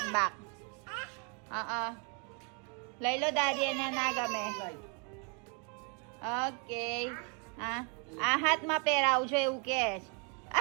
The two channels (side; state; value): left; quieter; 36.1 dB